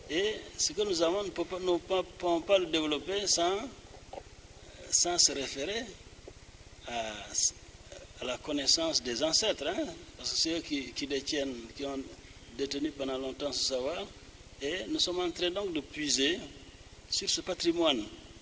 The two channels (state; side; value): identical; both; correlation 1.00